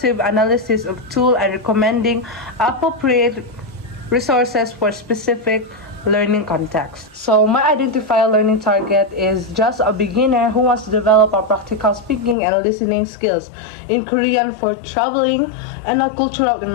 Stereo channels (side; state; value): right; drops out; at 12.4 s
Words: analysis of tool and recommending appropriate resources for specific learning context. So my identified learning target is just a beginner who wants to develop a practical speaking and listening skills in Korean for traveling and a cultural